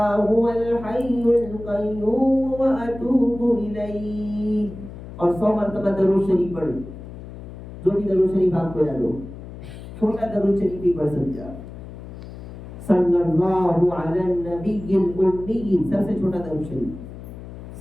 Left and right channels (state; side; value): noise; left; hum, 13 dB below the sound